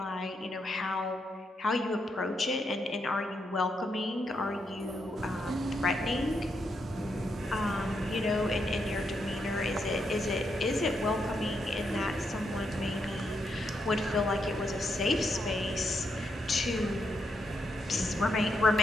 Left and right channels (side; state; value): both; normal; correlation 0.81